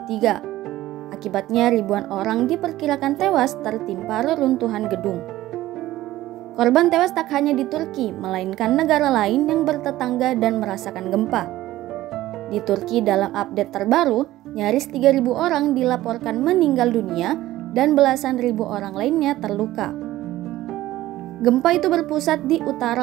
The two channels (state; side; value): quieter; left; 15.6 dB